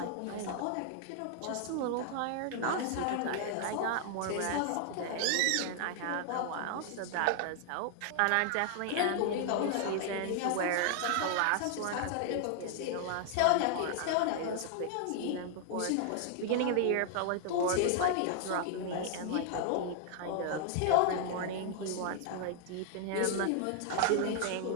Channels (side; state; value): both; different; correlation 0.00